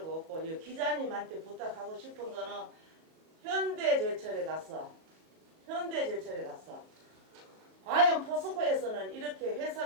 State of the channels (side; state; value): left; late; 37 ms